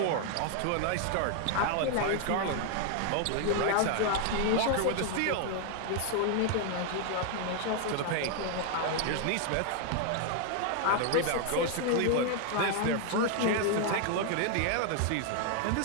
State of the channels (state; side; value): different; both; correlation 0.00